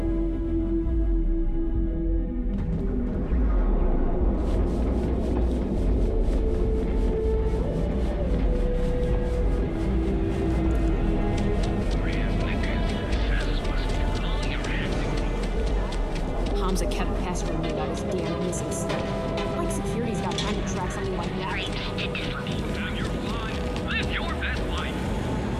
Hamza kept pestering me about his damn missus. Like security's got time to track something like that. You're fine. Live your best life.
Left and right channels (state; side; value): identical; both; correlation 1.00